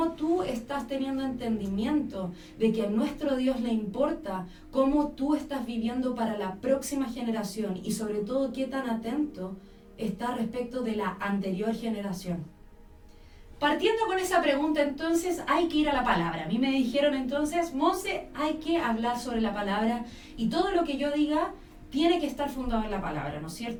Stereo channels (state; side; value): identical; both; correlation 1.00